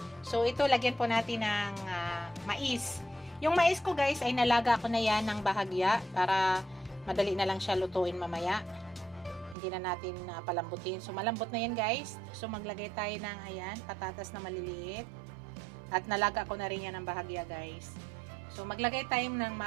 So, ito, lagyan po natin ng mais. Yung mais ko, guys, ay nalaga ko na yan ng bahagya para madali na lang siya lutuin mamaya. Hindi na natin palambutin. So, malambot na yan, guys. So, maglagay tayo ng, ayan, patatas na maliliit. At nalaga ko na rin yan ng bahagya, guys. So, maglagay tayo ng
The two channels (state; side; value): drops out; left; at 9.6 s